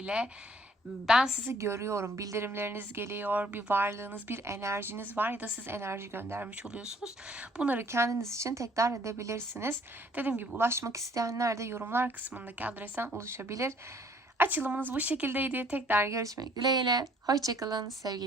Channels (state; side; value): normal; both; correlation 0.59